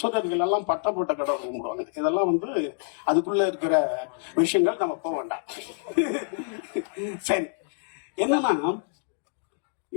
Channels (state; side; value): silent; right; digital silence